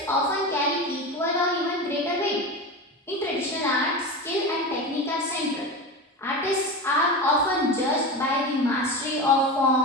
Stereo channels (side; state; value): both; normal; correlation 0.25